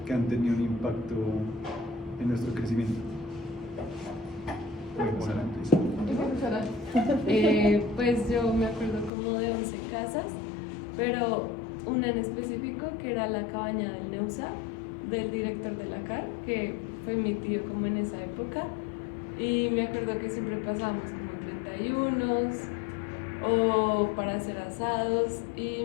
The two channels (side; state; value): right; drops out; at 9.1 s